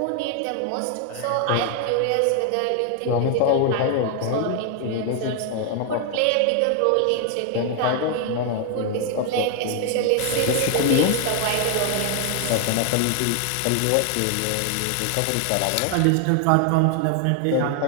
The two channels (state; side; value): different; both; correlation 0.00